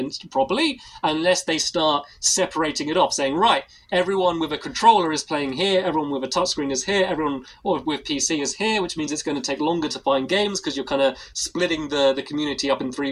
properly unless they start separating it off, saying, right, everyone with a controller is playing here, everyone with a touchscreen is here, everyone with PC is here, which means it's going to take longer to find games because you're kind of splitting the community up in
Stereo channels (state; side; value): identical; both; correlation 1.00